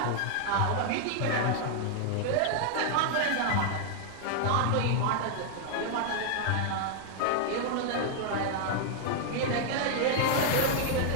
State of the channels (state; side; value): different; both; correlation 0.00